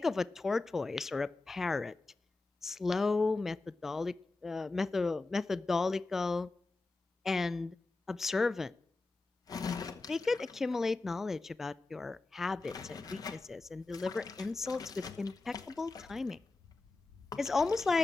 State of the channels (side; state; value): right; quieter; 3.4 dB